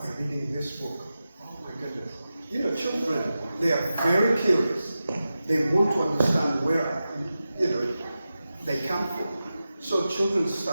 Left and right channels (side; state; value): both; inverted; correlation -0.93